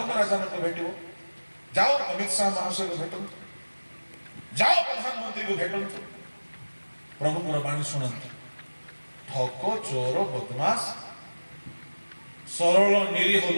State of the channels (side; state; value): both; inverted; correlation -1.00